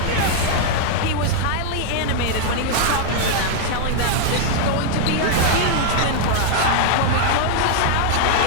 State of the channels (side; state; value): both; different; correlation 0.00